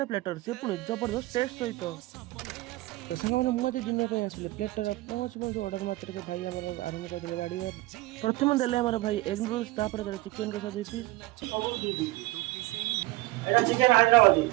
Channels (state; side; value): quieter; left; 19.7 dB